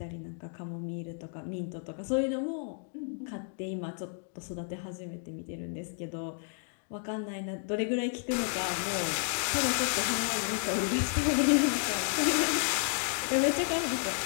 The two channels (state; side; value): silent; right; 57 dB below the other